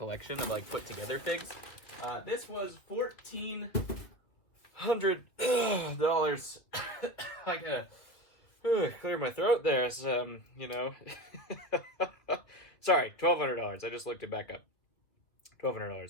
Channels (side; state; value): right; late; 2.7 ms